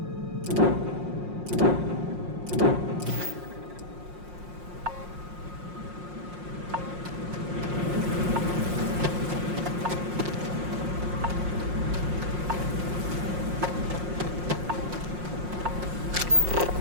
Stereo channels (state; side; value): late; left; 5.6 ms